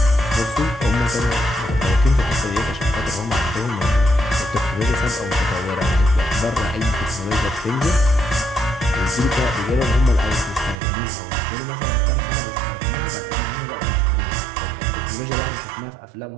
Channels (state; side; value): drops out; left; at 10.8 s